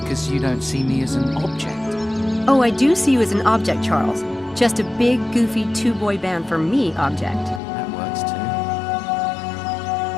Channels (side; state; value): right; drops out; at 7.6 s